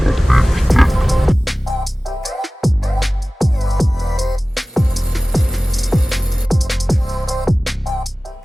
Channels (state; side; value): normal; both; correlation 0.97